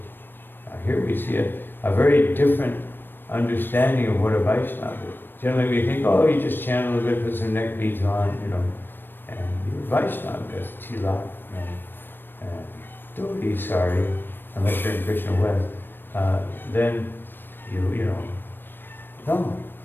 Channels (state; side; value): late; right; 0.096 ms